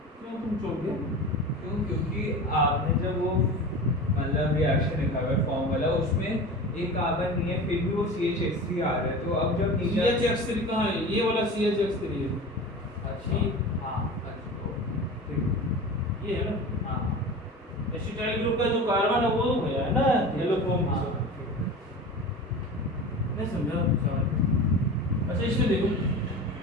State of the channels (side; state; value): both; normal; correlation 0.33